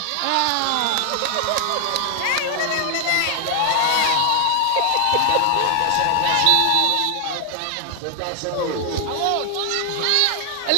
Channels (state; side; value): different; both; correlation 0.00